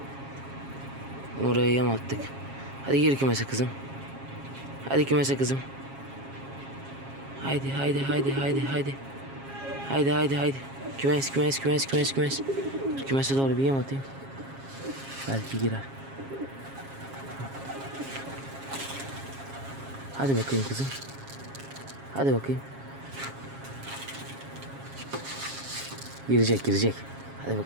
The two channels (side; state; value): left; late; 7.4 ms